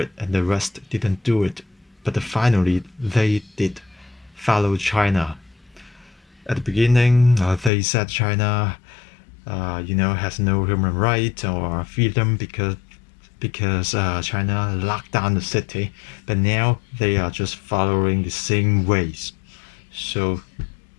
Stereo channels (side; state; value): right; drops out; at 7.7 s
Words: and the rest didn't do it. But finally, they did follow China. At the beginning, they said China, has no human right or freedom because China locked down the city. But now they are just following the same ways. So